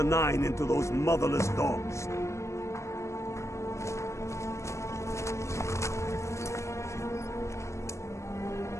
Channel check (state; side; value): late; right; 0.14 ms